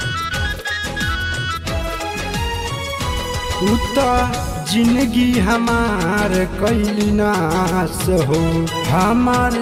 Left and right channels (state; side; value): identical; both; correlation 1.00